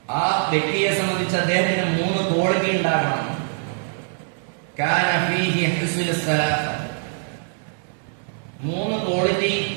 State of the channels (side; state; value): left; silent; digital silence